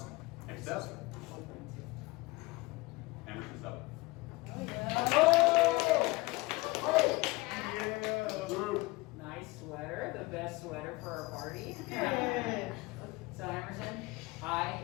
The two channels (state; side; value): quieter; right; 22.6 dB